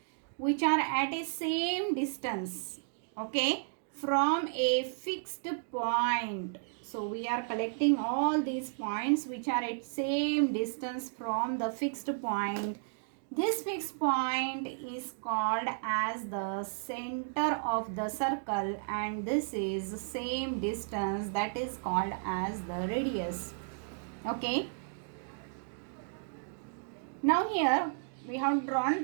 which are at a same distance, okay, from a fixed point. So we are collecting all these points which are at same distance from the fixed point. This fixed point is called as the center of the circle, and this is same distance, that is called as the radius. Okay. Now here we have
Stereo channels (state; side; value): silent; left; digital silence